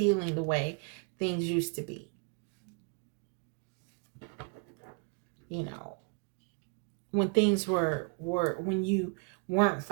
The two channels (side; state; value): left; quieter; 38.7 dB